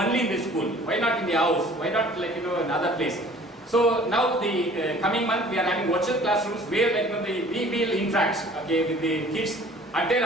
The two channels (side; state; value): both; normal; correlation 0.50